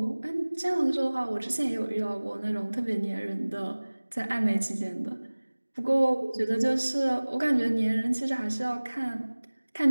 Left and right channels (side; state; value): both; inverted; correlation -1.00